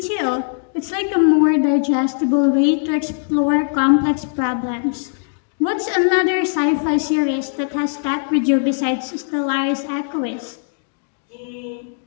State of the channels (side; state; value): right; silent; digital silence